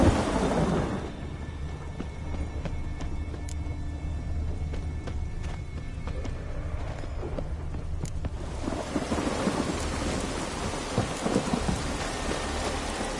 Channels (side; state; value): both; identical; correlation 1.00